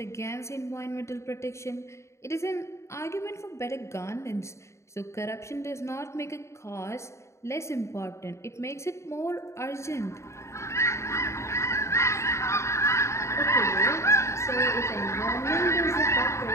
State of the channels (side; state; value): right; late; 0.14 ms